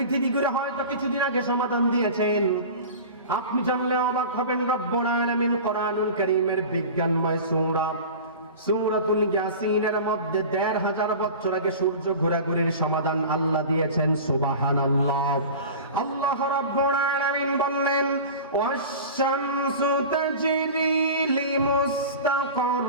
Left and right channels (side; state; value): both; inverted; correlation -0.35